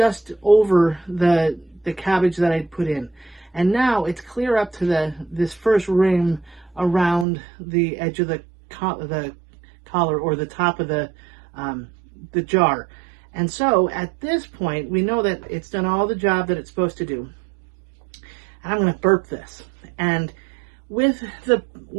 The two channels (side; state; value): left; drops out; at 7.2 s